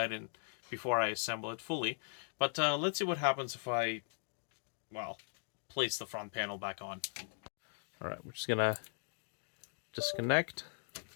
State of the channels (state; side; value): silent; right; digital silence